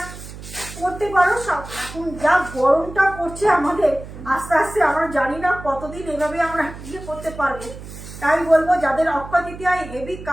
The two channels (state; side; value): noise; right; hum, 13 dB below the sound